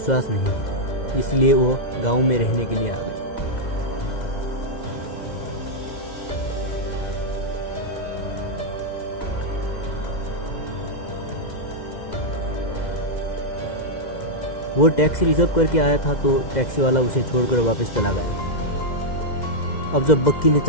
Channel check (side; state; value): right; late; 2.0 ms